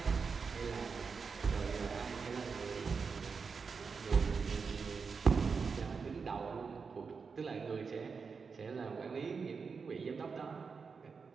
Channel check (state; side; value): quieter; left; 5.3 dB